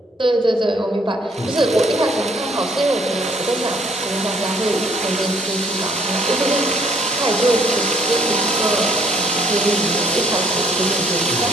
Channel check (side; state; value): both; normal; correlation 0.65